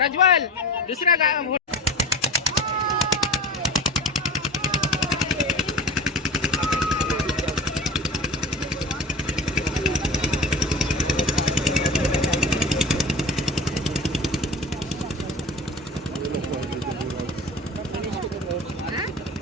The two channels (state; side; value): normal; both; correlation 0.35